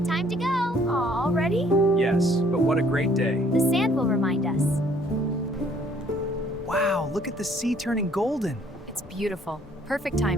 Time to go. Aw, ready? Yes, but what a great day. The sand will remind us. Wow, look at the sea turning golden. It's beautiful. Perfect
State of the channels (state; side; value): normal; both; correlation 0.60